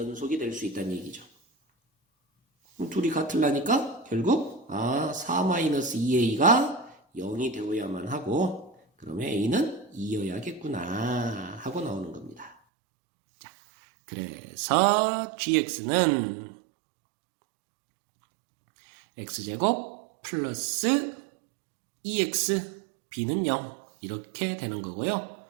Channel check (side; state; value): left; drops out; at 12.6 s